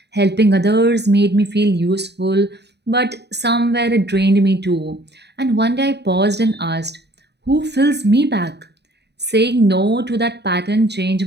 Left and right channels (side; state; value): left; late; 0.49 ms